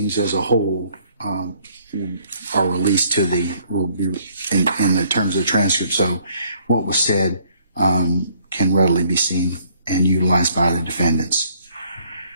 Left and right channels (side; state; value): both; inverted; correlation -0.63